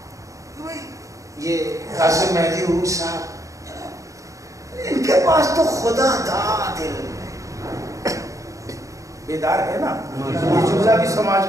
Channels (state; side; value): late; left; 0.16 ms